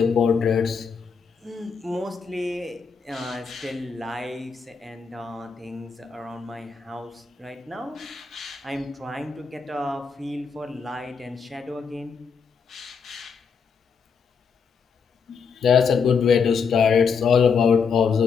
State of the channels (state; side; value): quieter; right; 5.8 dB